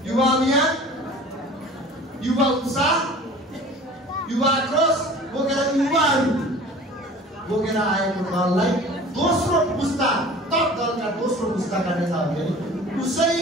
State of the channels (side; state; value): both; normal; correlation 0.43